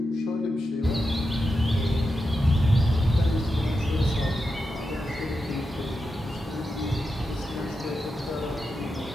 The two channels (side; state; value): both; normal; correlation 0.88